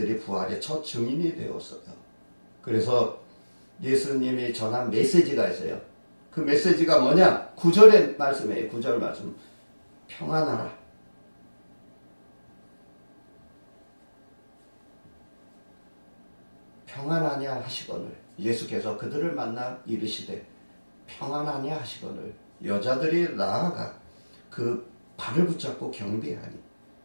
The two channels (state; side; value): inverted; both; correlation -1.00